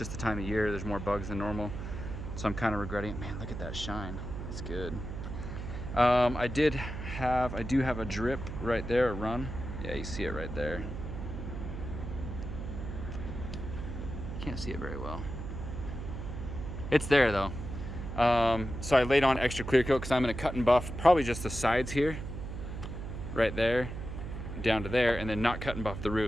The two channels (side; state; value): right; noise; hum, 7 dB below the sound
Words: the time of year. There's more bugs than normal, so I'm kind of regretting it. Man, look at that shine. It's good. I do have a drip right there, a run. Yeah, you see it right there. Can't see it very well. It's there though. So I laid on extra clear coat because I'm going to cut and buff probably just the sides here, right there, down to there, and then not cut and buff the